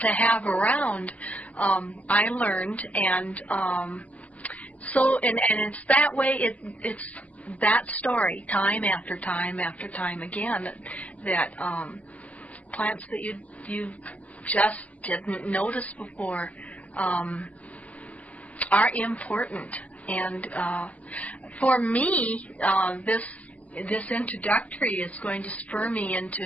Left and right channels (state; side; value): late; right; 0.074 ms